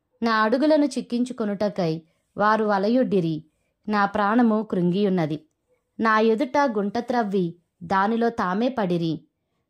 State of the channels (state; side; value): identical; both; correlation 1.00